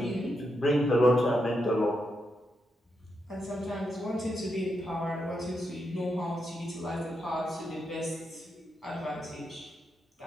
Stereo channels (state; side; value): normal; both; correlation 0.83